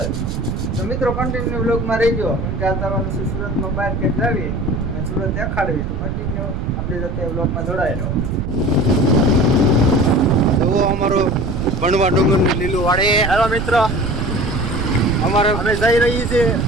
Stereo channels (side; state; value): right; noise; rumble, 3 dB below the sound